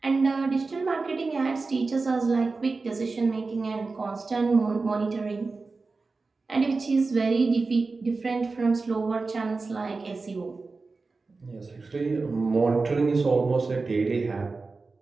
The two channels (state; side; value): quieter; left; 3.9 dB